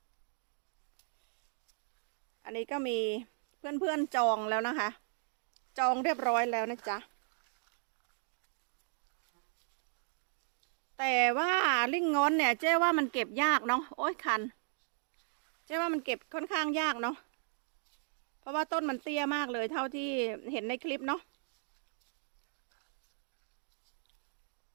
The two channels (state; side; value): silent; left; digital silence